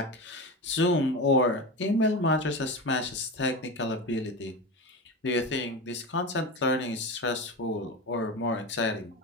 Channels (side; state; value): both; normal; correlation 0.23